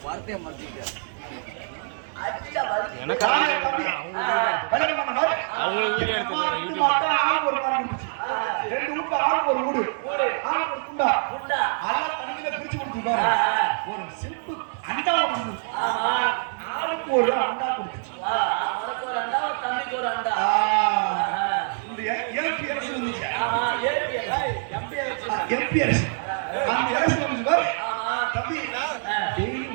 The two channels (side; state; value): left; silent; 62 dB below the other